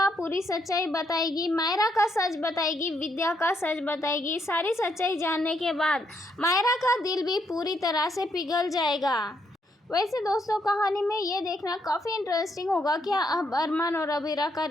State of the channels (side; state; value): both; normal; correlation 0.75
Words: पूरी सच्चाई बताएगी, मायरा का सच बताएगी, विद्या का सच बताएगी। सारी सच्चाई जानने के बाद मायरा का दिल भी पूरी तरह से पिघल जाएगा। वैसे दोस्तों, कहानी में ये देखना काफ़ी इंटरेस्टिंग होगा, क्या अब अरमान और अबीरा का